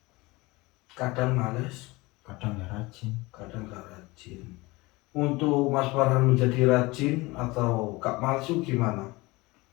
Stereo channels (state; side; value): quieter; right; 22.5 dB